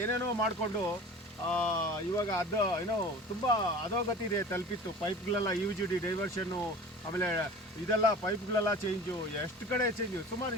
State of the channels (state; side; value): normal; both; correlation 0.40